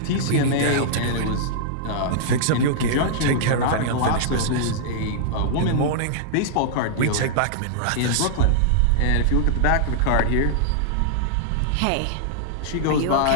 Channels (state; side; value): different; both; correlation -0.02